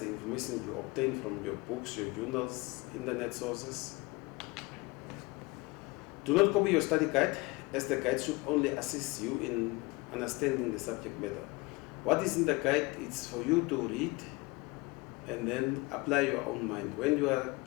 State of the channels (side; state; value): right; quieter; 24.4 dB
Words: information you obtain from your books, your journals, internet sources. Do not copy your study guide, as the guide should only assist you in understanding the subject matter. What is in the guide is for you to read and then apply your own mind. When you are